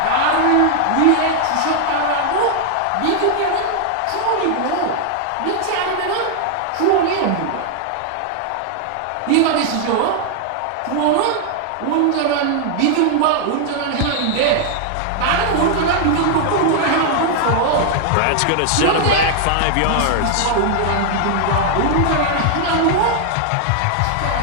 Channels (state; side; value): different; both; correlation 0.00